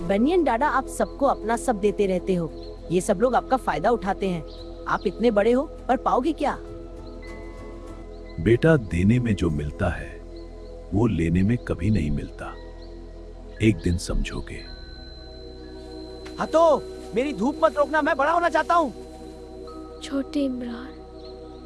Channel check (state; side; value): identical; both; correlation 1.00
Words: बनियन दादा, आप सबको अपना सब देते रहते हो। ये सब लोग आपका फायदा उठाते हैं। आप इतने बड़े हो पर पाओगे क्या? बेटा, देने में जो मिलता है वो लेने में कभी नहीं मिलता। एक दिन समझोगे। हाँ तो मेरी धूप मत रोकना, मैं बड़ा होना चाहता हूँ। छोटे इमरान,